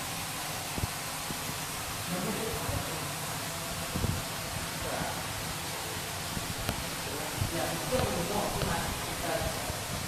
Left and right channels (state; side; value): identical; both; correlation 1.00